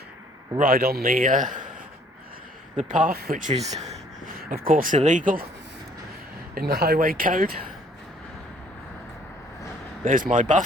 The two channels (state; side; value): normal; both; correlation 0.60